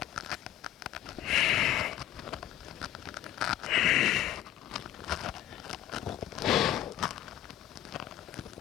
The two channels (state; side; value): quieter; right; 12.6 dB